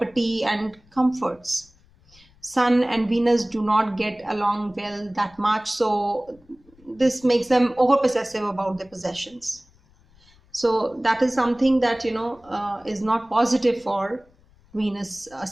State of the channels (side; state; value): left; noise; rumble, 30 dB below the sound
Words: and comforts. Sun and Venus do not get along well that much, so this makes them over possessive about their possessions. So that is something that is not positive for Venus